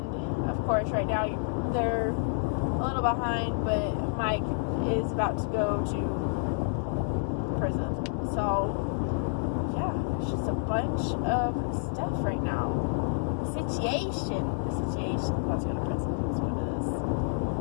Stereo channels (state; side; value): silent; right; 59 dB below the other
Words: of course, right now they're a little behind, but Mike is about to go to prison. So, yeah, it's just a bunch of stuff right now. The situation. About to go to prison. That's what it is.